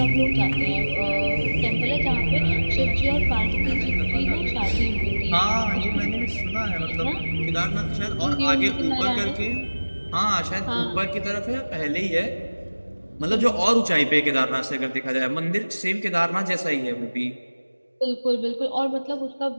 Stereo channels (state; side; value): inverted; both; correlation -1.00